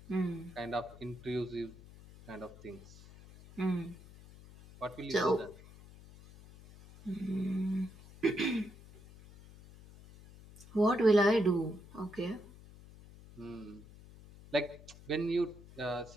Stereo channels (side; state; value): left; noise; hum, 20 dB below the sound